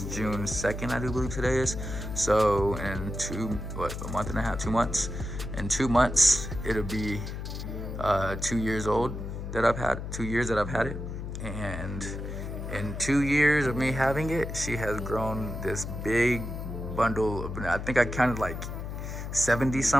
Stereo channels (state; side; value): noise; left; hum, 6 dB below the sound